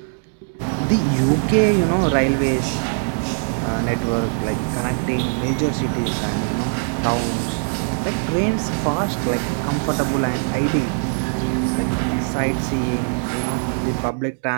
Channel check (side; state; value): left; silent; 65 dB below the other